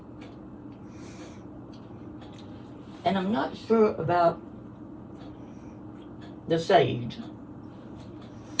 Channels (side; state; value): both; identical; correlation 1.00